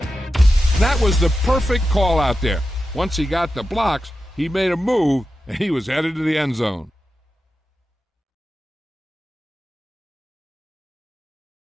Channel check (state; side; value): normal; both; correlation 0.91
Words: That was the perfect call out there. Once he got the blocks, he made a move, and he was headed to the end zone.